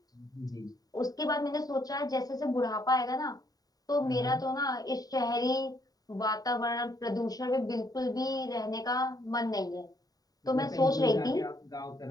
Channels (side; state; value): right; late; 0.18 ms